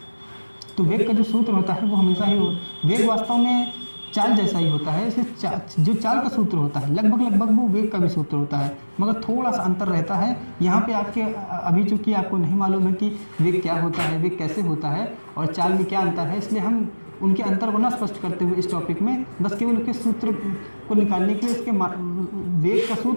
तो वेग का जो सूत्र होता है वो हमेशा ही वेग वास्तव में चाल जैसा ही होता है। इसे जो चाल का सूत्र होता है लगभग वो वेग का भी सूत्र होता है, मगर थोड़ा सा अंतर रहता है। यहाँ पे आपके अभी चूंकि आपको नहीं मालूम है कि वेग क्या होता है, वेग कैसे होता है और चाल में क्या अंतर है, इसलिए हम उनके अंतर को ना स्पष्ट करते हुए इस टॉपिक में बस केवल उसके सूत्र को निकालने के लिए इसके वेग का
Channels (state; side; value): inverted; both; correlation -1.00